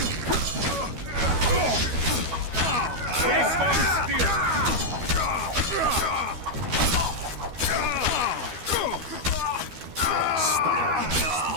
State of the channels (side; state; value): left; late; 12 ms